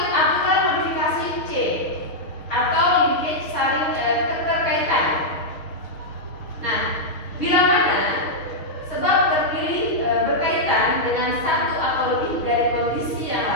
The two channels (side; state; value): right; late; 6.4 ms